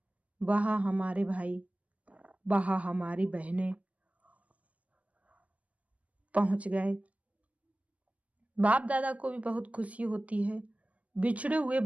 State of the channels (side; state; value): left; late; 0.067 ms